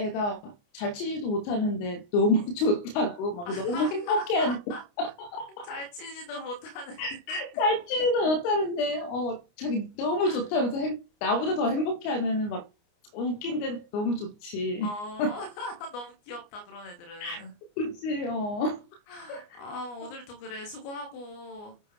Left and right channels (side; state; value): right; late; 29 ms